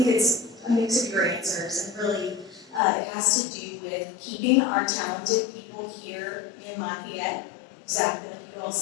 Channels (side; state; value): right; drops out; at 2.8 s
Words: it's a mix of your answers, and really it has to do with keeping our talented people here in Lafayette, exactly like you all